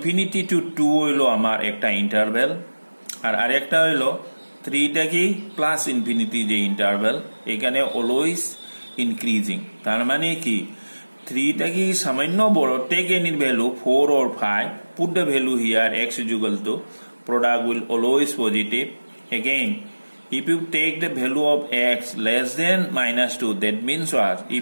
two 2 হইল আমার একটা ইন্টারভ্যাল, আর আরেকটা হইল 3টা কি প্লাস ইনফিনিটি যে ইন্টারভ্যাল, এখানে অলওয়েজ ইনক্রিজিং, তার মানে কি 3টা কি সামান্য বড়, take any value 4 or 5, put the value here x is equal to, product will always positive. Again, if you take the value of x less than -2, that means what?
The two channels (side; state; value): both; inverted; correlation -1.00